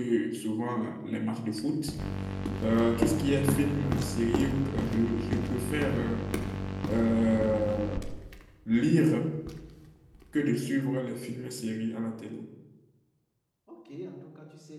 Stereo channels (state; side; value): identical; both; correlation 1.00